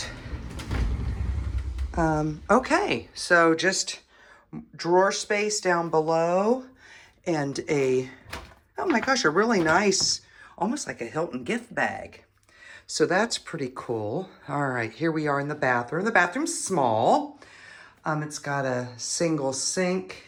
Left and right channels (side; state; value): both; identical; correlation 1.00